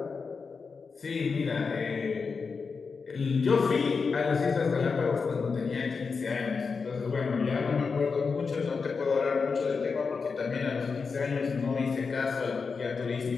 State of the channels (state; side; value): quieter; right; 5.0 dB